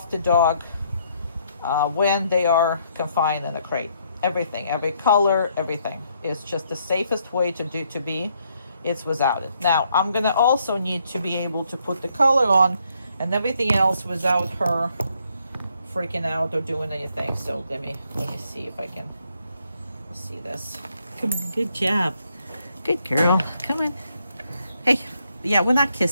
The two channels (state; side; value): inverted; both; correlation -0.72